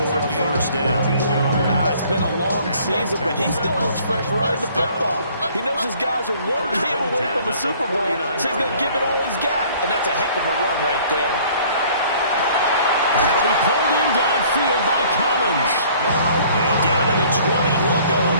a first down. It's been a long season, but he still looks fresh running the football. He knows his guys are one game away from a Super Bowl, so he's going to give it all he's got. And that's a heck of a run right there. That'll be pulled in downfield by Collins. And down to the 20 he'll go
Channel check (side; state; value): both; inverted; correlation -0.55